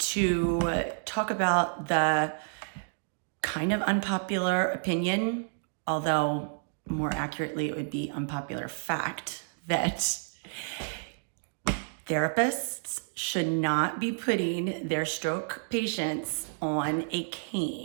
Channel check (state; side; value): silent; left; digital silence